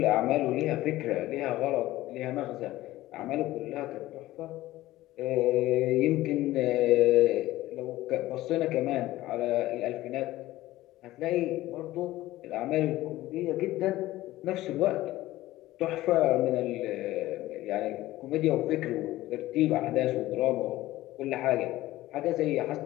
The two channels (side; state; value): right; quieter; 16.5 dB